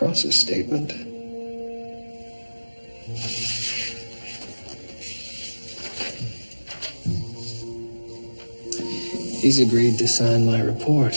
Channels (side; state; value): both; inverted; correlation -1.00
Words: statement. He's agreed to sign my